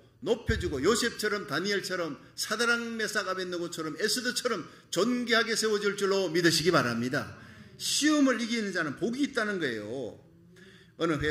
높여주고 요셉처럼 다니엘처럼 사드락 메삭 아벳느고처럼 에스더처럼 존귀하게 세워줄 줄로 믿으시기 바랍니다. 시험을 이기는 자는 복이 있다는 거예요. 어느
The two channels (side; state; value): both; identical; correlation 1.00